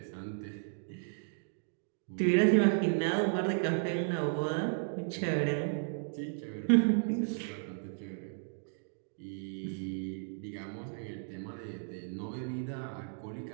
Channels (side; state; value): left; silent; digital silence